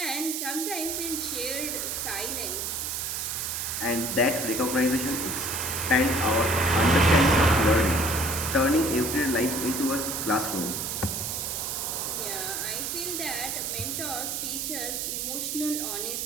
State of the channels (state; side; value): noise; right; hiss, 2 dB below the sound